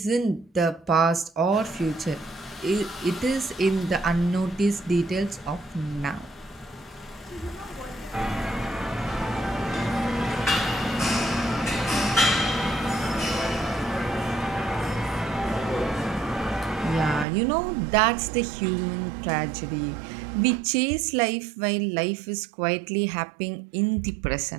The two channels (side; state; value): left; drops out; at 17.2 s